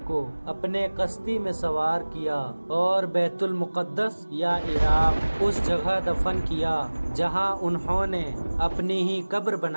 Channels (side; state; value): both; inverted; correlation -1.00